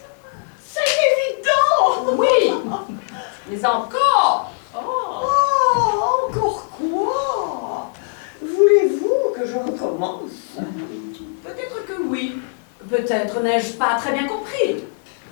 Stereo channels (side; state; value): right; silent; digital silence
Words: C'est évident! Oui, mais encore. Oh, encore quoi? Voulez-vous que je recommence? Peut-être que oui, peut-être n'ai-je pas très bien compris.